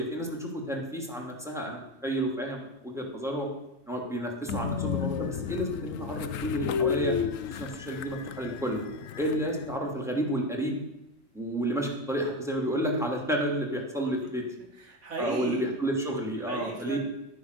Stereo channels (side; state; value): both; normal; correlation 0.20